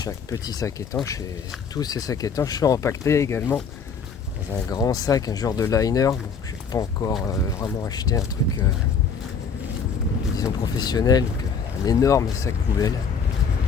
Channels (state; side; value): quieter; right; 5.9 dB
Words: Chaque petit sac étanche et tous ces sacs étanches sont empaquetés également dans un grand sac, un genre de liner. Je n'ai pas encore vraiment acheté un truc disons professionnel, donc un énorme sac poubelle.